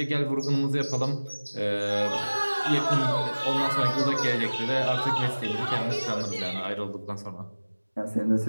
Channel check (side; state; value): both; inverted; correlation -1.00